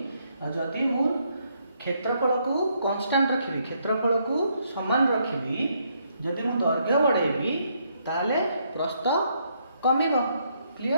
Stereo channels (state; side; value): inverted; both; correlation -0.73